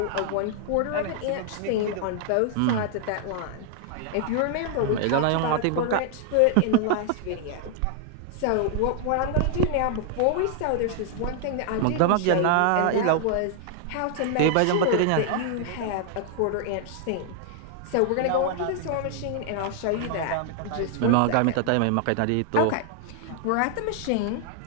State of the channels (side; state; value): both; different; correlation 0.00